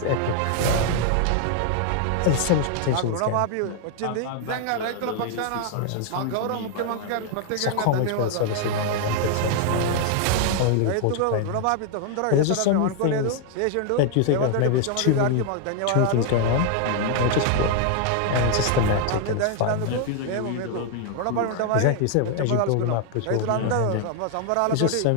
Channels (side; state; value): both; different; correlation 0.00